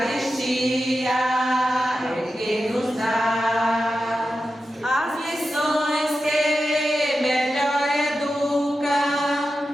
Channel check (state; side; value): normal; both; correlation 0.91